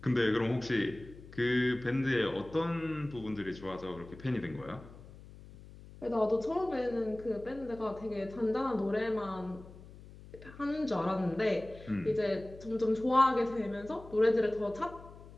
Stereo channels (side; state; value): left; noise; hum, 18 dB below the sound